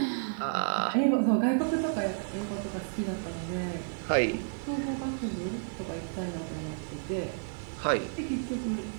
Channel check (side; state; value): left; silent; digital silence